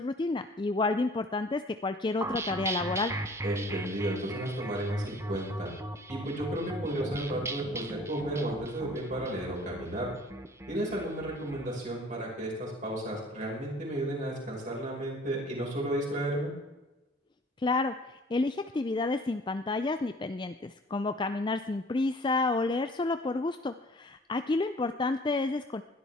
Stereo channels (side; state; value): both; normal; correlation 0.51